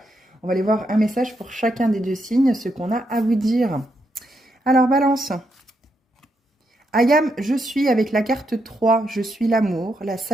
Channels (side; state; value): both; normal; correlation 0.80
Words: On va aller voir un message pour chacun des deux signes, ce qu'on a à vous dire. Alors balance, Ayam, je suis avec la carte 3, je suis l'amour, la